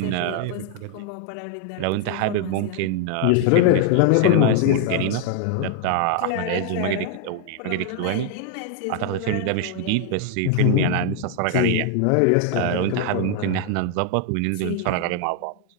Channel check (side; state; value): both; different; correlation 0.00